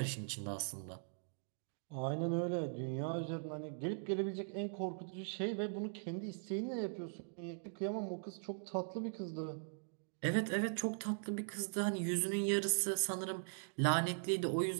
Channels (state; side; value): silent; left; digital silence